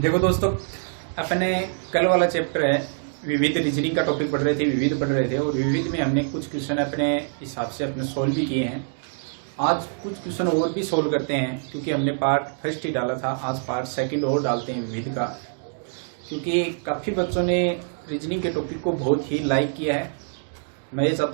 दोस्तों, अपने कल वाला चैप्टर है विविध रीजनिंग का टॉपिक पढ़ रहे थे, विविध पढ़ रहे थे और विविध में हमने कुछ क्वेश्चन अपने हिसाब से अपने सोल्व भी किए हैं। आज कुछ क्वेश्चन और भी सोल्व करते हैं क्योंकि हमने पार्ट फर्स्ट ही डाला था, आज पार्ट सेकंड और डालते हैं विविध का, क्योंकि काफ़ी बच्चों ने रीजनिंग के टॉपिक को बहुत ही लाइक किया है। मैं ये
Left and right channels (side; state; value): left; silent; digital silence